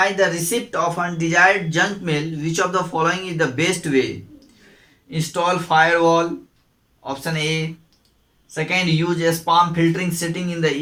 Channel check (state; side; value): identical; both; correlation 1.00